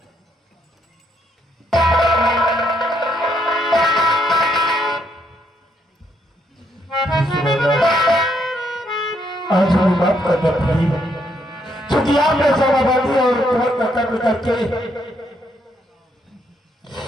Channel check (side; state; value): both; normal; correlation 0.74